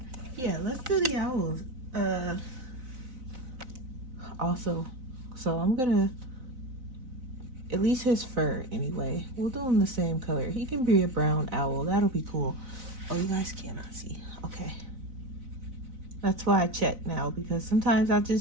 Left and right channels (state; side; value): late; left; 4.0 ms